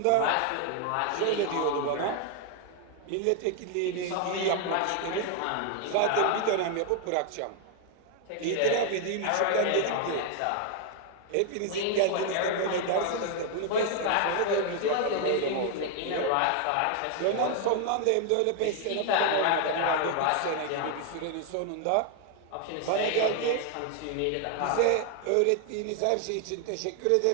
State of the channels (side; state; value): both; different; correlation 0.00